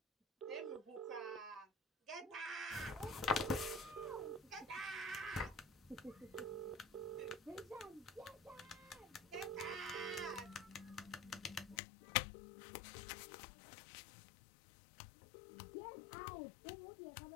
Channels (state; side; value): drops out; right; at 11.8 s